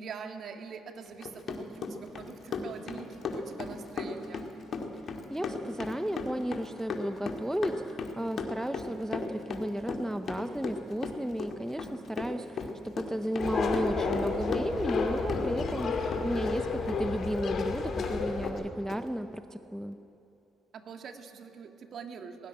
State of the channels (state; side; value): normal; both; correlation 0.85